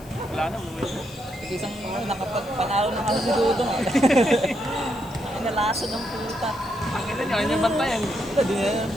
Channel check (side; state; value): left; noise; hiss, 23 dB below the sound